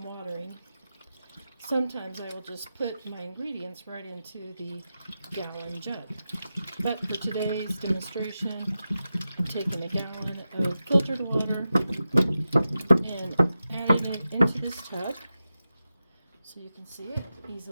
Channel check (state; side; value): inverted; both; correlation -0.92